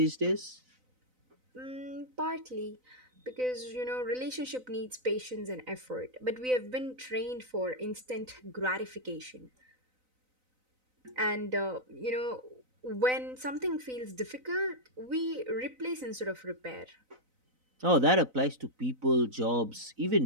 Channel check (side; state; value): left; late; 3.9 ms